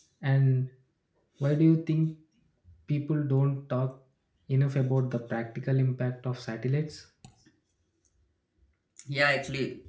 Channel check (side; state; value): both; identical; correlation 1.00